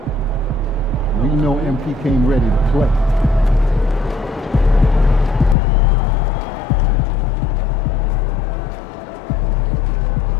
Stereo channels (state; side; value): drops out; right; at 5.6 s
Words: We know MP came ready to play.